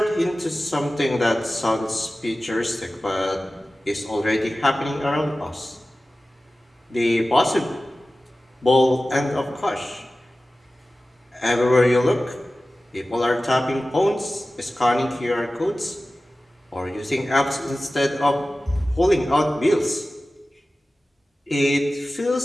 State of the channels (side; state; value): both; normal; correlation 0.96